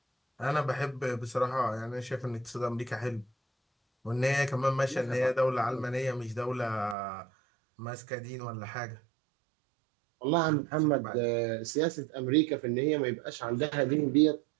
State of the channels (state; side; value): drops out; left; at 7.0 s